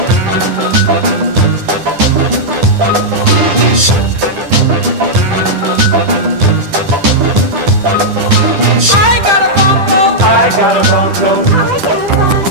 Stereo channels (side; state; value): left; late; 10 ms